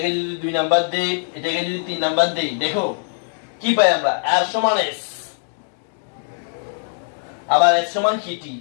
যদি 2 নাম্বার দেই, এটাকে যদি 3 নাম্বার দেই, দেখো কি পাই আমরা, r সমান s, আবার s সমান কি t,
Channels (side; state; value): right; silent; digital silence